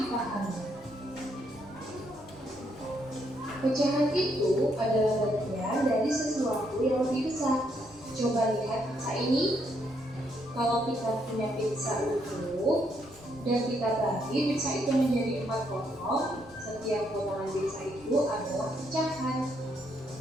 Pecahan itu adalah bagian dari sesuatu yang lebih besar. Coba lihat pizza ini. Kalau kita punya pizza utuh dan kita bagi pizza itu menjadi 4 potong, setiap potongan pizza itu adalah pecahan.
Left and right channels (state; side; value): noise; left; rumble, 26 dB below the sound